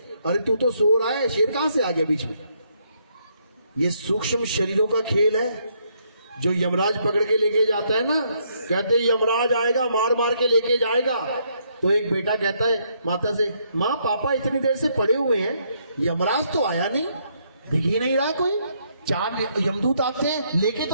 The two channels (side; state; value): both; inverted; correlation -0.73